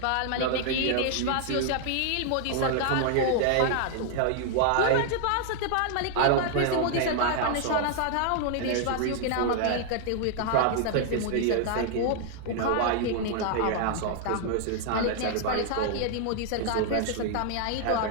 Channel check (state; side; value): different; both; correlation 0.00